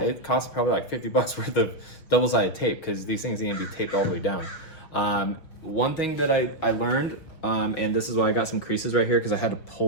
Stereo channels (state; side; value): late; right; 6.2 ms